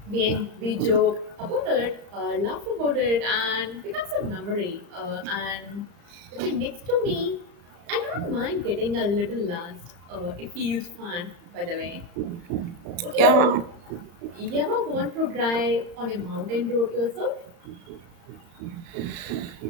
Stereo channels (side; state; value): left; late; 35 ms